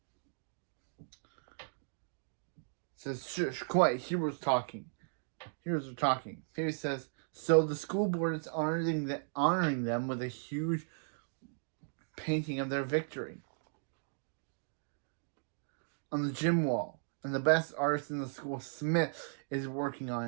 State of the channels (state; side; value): silent; left; digital silence